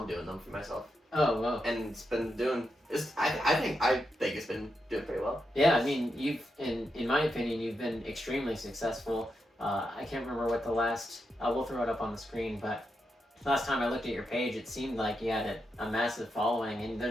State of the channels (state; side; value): normal; both; correlation 0.85